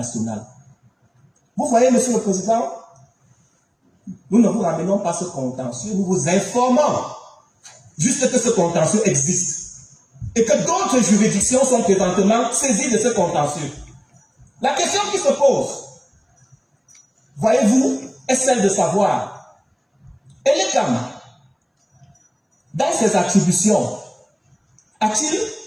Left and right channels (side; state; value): both; identical; correlation 1.00